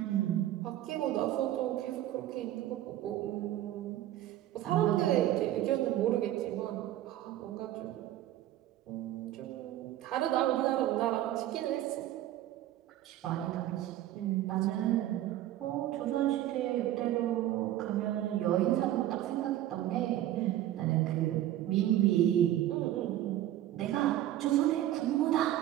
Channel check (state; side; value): quieter; left; 13.4 dB